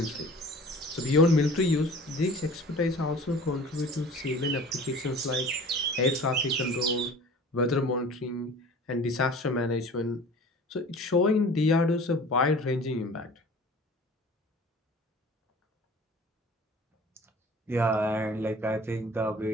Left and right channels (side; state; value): both; normal; correlation 0.43